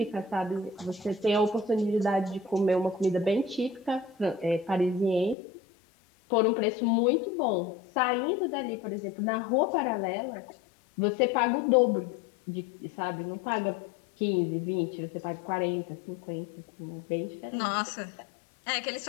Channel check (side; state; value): right; drops out; at 5.4 s